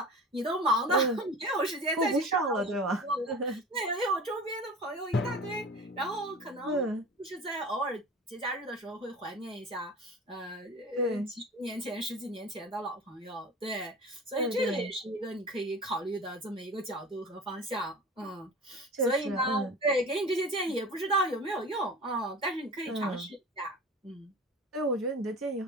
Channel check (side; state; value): both; normal; correlation 0.35